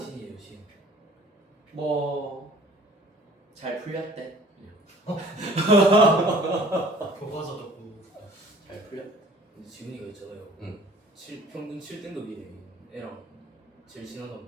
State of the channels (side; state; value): both; normal; correlation 0.50